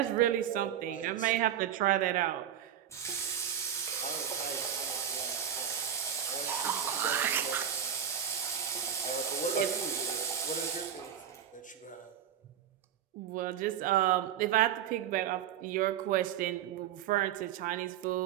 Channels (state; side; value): quieter; left; 9.6 dB